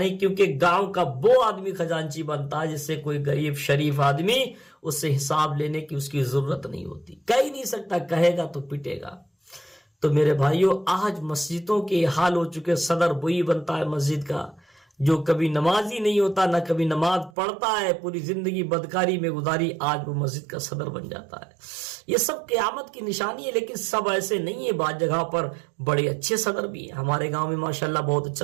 کیونکہ گاؤں کا وہ آدمی خزانچی بنتا ہے جس سے کوئی غریب شریف آدمی اس سے حساب لینے کی اس کی ضرورت نہیں ہوتی. کہہ ہی نہیں سکتا, کہے گا تو پٹے گا. تو میرے بھائیوں, آج مسجدوں کے حال ہو چکے. صدر وہی بنتا ہے مسجد کا جو کبھی نمازی نہیں ہوتا, نہ کبھی نماز پڑھتا ہے, پوری زندگی بدکاری میں گزاری, آج وہ مسجد کا صدر بن جاتا ہے. یہ سب قیامت کی نشانی ہے, لیکن سب ایسے نہیں ہے. بعض جگہ پر بڑے اچھے صدر بھی ہیں. ہمارے گاؤں میں ماشاءاللہ بہت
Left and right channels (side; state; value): left; drops out; at 17.3 s